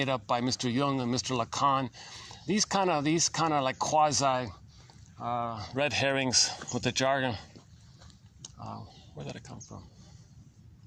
up by Mr. Jung and Mr. Lacan. These kind of like quasi red herrings with the jargon. Where did it come from?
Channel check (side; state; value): both; identical; correlation 1.00